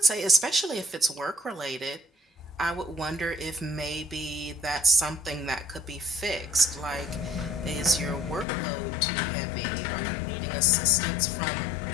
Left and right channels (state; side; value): drops out; right; at 8.5 s